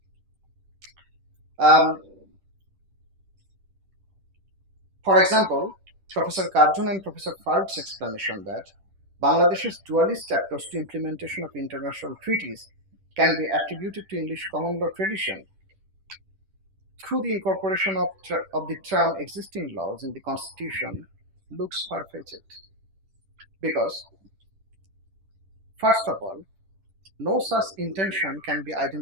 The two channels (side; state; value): left; late; 10 ms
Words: um, for example, Professor Karjun and Professor Faruk's explanation that Bangladesh's dualist approach to implementation of international treaties can be attributed to English common law tradition through the incorporation of the term existing laws in the Constitution looks far-fetched. Because, first of all, no such intention can be